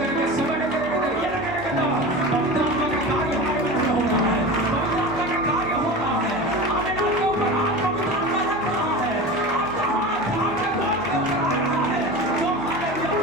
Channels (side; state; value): right; noise; hum, 20 dB below the sound